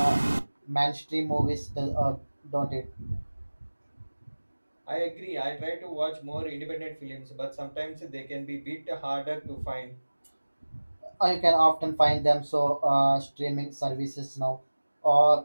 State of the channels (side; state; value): both; inverted; correlation -1.00